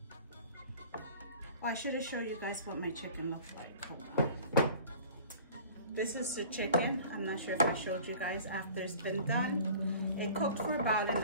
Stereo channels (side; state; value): both; inverted; correlation -0.45